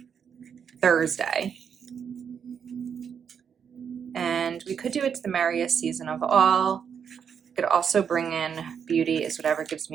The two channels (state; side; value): quieter; left; 7.3 dB